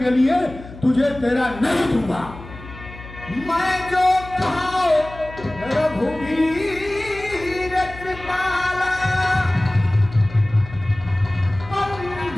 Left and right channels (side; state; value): left; noise; hum, 16 dB below the sound